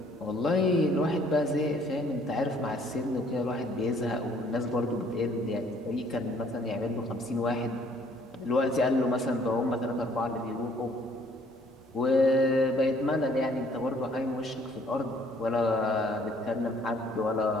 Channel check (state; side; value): normal; both; correlation 0.61